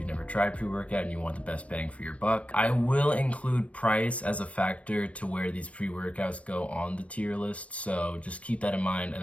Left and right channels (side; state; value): right; late; 0.064 ms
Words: never tried pre-workout and you want the best bang for your buck. I will include price as a factor to where these pre-workouts go on the tier list, so just keep that in mind